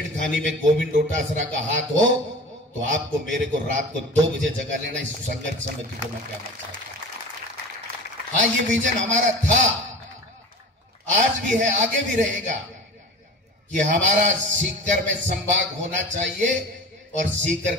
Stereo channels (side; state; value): both; normal; correlation 0.34